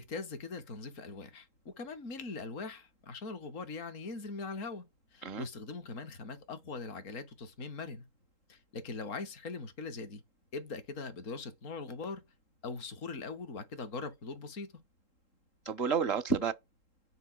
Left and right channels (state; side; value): late; right; 3.8 ms